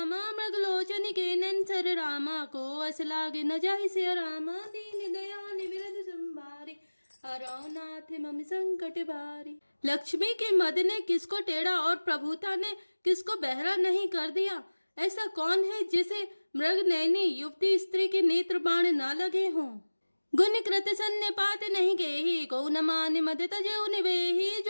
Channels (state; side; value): inverted; both; correlation -1.00